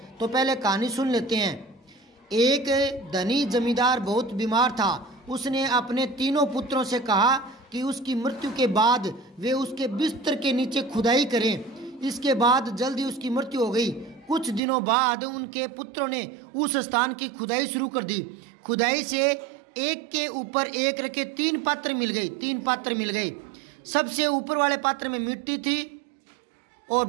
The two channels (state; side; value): drops out; left; at 14.6 s